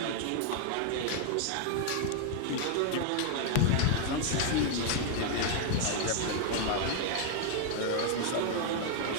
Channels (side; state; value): both; different; correlation 0.00